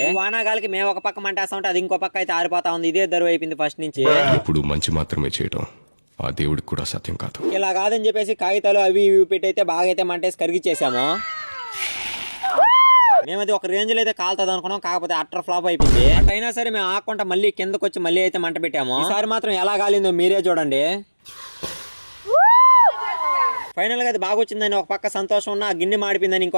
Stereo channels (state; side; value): inverted; both; correlation -1.00